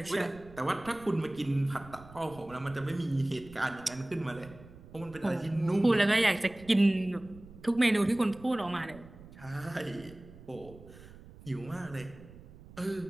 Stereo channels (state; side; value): noise; right; rumble, 19 dB below the sound